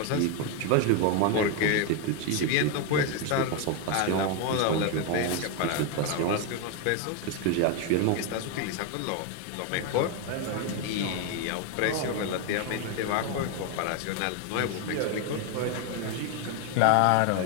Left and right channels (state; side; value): different; both; correlation 0.01